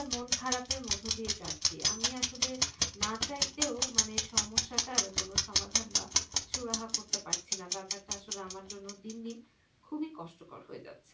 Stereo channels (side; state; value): both; identical; correlation 1.00